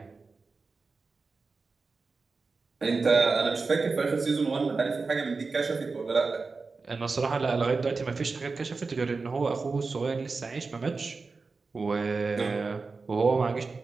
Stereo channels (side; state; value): left; quieter; 4.2 dB